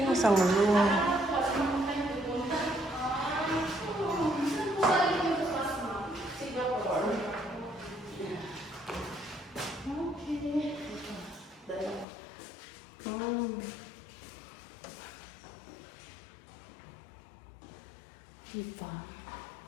isang room. Diba?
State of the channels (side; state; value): right; drops out; at 12.1 s